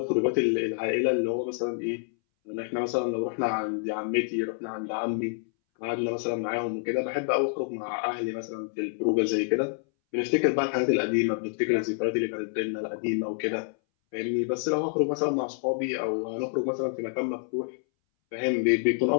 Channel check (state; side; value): silent; right; 59 dB below the other